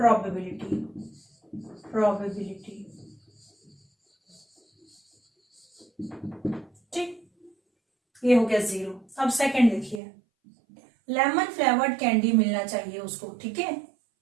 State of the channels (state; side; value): drops out; left; at 10.0 s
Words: ठीक, ये हो गया 0। अब सेकंड देखिए, लेमन फ्लेवर्ड कैंडी मिलना चाहिए उसको, ठीक है।